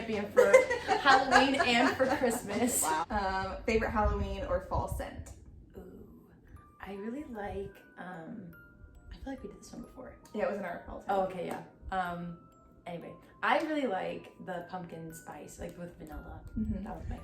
for Halloween and for Christmas. Wow. Favorite Halloween or fall scent? Ooh, I really like, I feel like we did this one before. Yeah, it was in our fall scent. Oh, okay, yeah. Anyway, I really like the pumpkin spice, like with vanilla. That was my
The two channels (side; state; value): both; identical; correlation 1.00